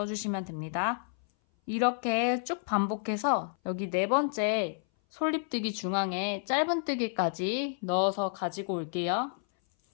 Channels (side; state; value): right; silent; 58 dB below the other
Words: 됩니다. 이렇게 쭉 반복해서 여기 4번째 솔잎뜨기 중앙에 짧은뜨기까지 넣어서 가지고 올게요.